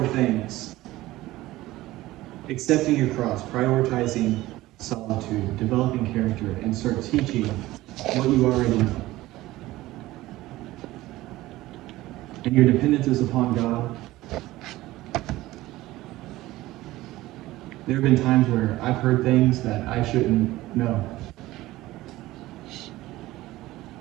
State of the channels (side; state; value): left; quieter; 17.3 dB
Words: things, accepting your cross, prioritizing solitude, developing character, and start teaching what you already know, and your dependence is upon God, there have been times where I've heard things that I shouldn't know.